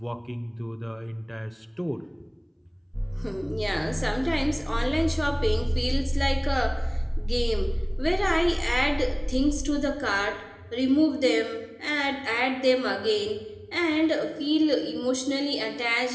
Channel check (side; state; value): both; identical; correlation 1.00